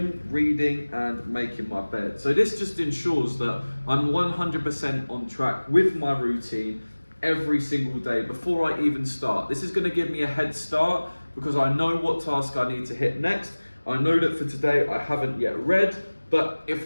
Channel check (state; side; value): inverted; both; correlation -1.00